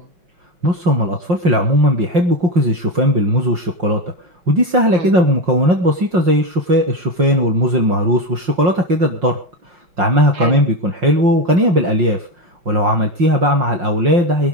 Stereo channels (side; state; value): left; late; 5.6 ms